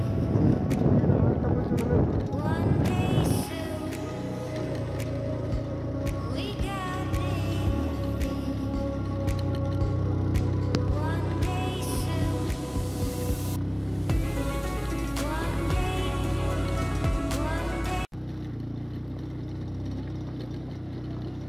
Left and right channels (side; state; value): both; identical; correlation 1.00